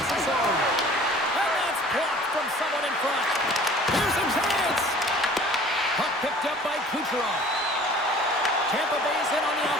zone. And that's blocked from someone in front. Here's a chance. Puck picked up by Kucherov. Tampa Bay's in on the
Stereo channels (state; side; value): normal; both; correlation 0.48